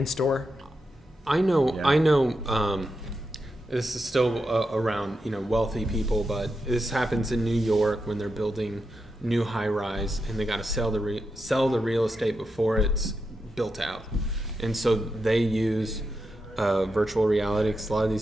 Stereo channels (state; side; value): normal; both; correlation 0.86